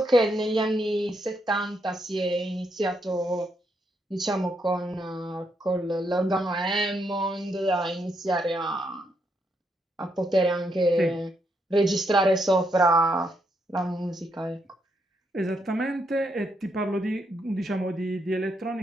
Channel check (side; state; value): both; normal; correlation 0.78